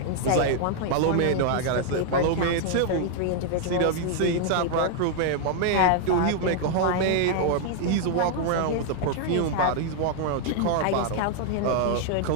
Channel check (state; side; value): different; both; correlation 0.00